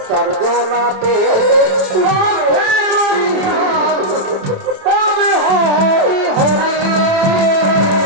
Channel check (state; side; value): late; left; 27 ms